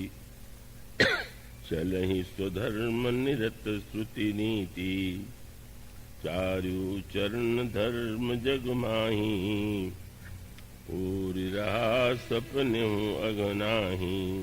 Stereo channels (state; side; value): identical; both; correlation 1.00